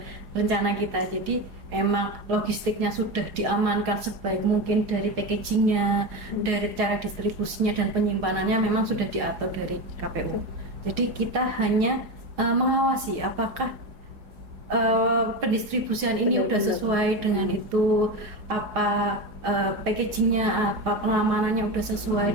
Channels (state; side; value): late; left; 4.8 ms